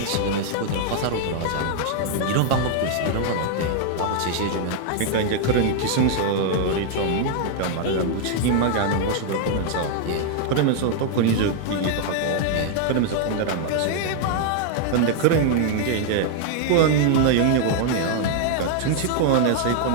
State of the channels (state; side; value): different; both; correlation 0.00